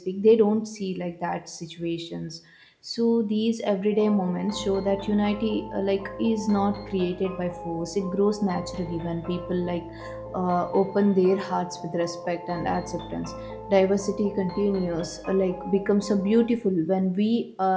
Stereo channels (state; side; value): identical; both; correlation 1.00